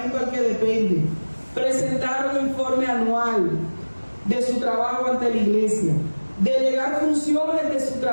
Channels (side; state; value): both; inverted; correlation -1.00